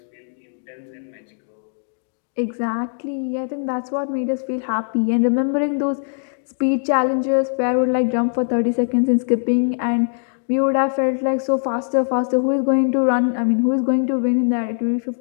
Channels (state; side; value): silent; right; digital silence